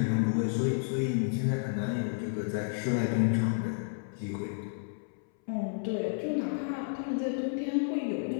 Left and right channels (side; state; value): right; silent; 57 dB below the other